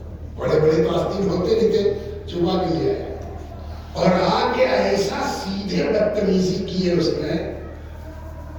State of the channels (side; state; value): both; identical; correlation 1.00